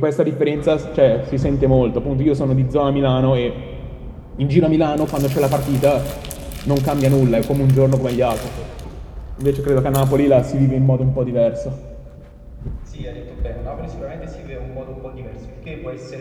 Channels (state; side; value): identical; both; correlation 1.00